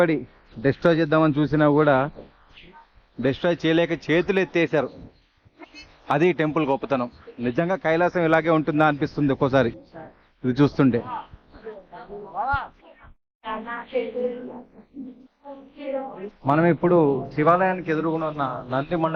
డిస్ట్రాయ్ చేద్దామని చూసినా కూడా డిస్ట్రాయ్ చేయలేక చేతులు ఎత్తేసారు. అది టెంపుల్ గొప్పతనం. నిజంగా కైలాసం ఇలాగే ఉంటుందా అనిపిస్తుంది ఒక్కోసారి ఇది చూస్తుంటే. మనం ఇప్పుడు శివాలయానికి ఎదురుగున ఉన్న నంది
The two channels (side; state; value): both; identical; correlation 1.00